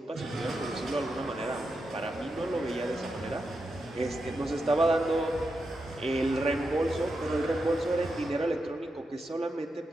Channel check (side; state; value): both; normal; correlation 0.87